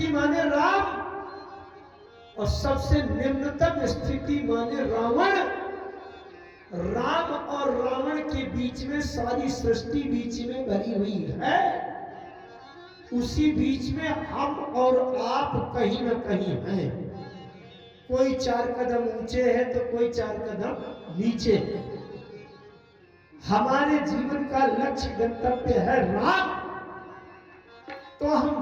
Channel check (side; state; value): both; identical; correlation 1.00